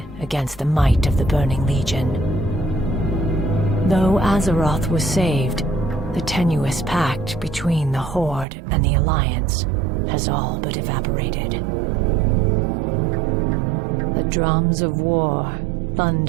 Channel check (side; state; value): left; drops out; at 8.5 s